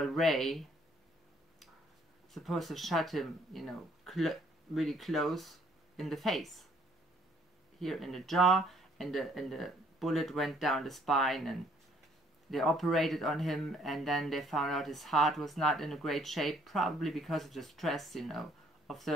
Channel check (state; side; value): normal; both; correlation 0.63